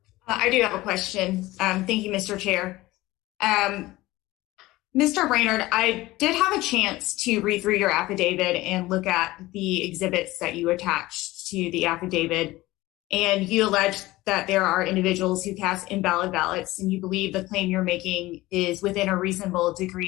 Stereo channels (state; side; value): quieter; right; 18.6 dB